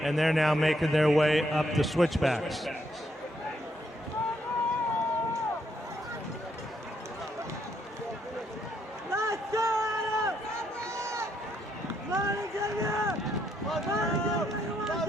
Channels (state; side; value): normal; both; correlation 0.75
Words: and they're now making their way up the switchbacks.